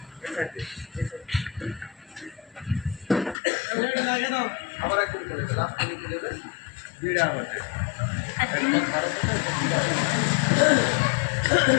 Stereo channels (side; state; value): right; drops out; at 3.4 s